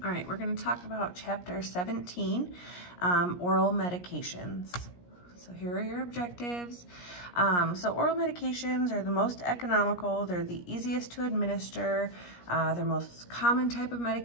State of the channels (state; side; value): late; right; 17 ms